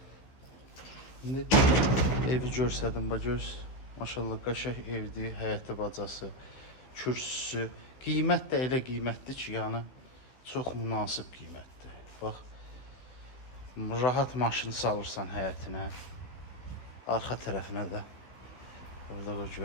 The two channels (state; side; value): late; right; 15 ms